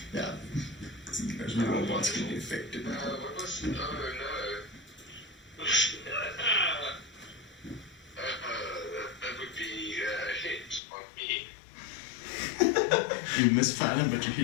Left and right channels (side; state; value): right; drops out; at 10.8 s